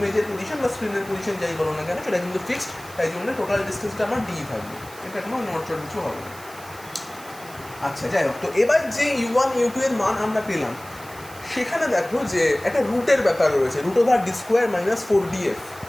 পজিশন বা স্ক্রিনের পজিশন যাই বলো না কেন সেটা কিন্তু ফিক্সড, তাই জন্য টোটাল ডিস্টেন্সটা আমার D থাকবে, এটা কোনো নড়চড় কিছু হবে না। আচ্ছা যাই হোক, তো এবার যে U1 U2 এর মান আমরা পেলাম সেখানে দেখো যে একটা রুটের ব্যাপার রয়েছে, root over D square minus 4df।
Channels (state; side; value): noise; right; hiss, 19 dB below the sound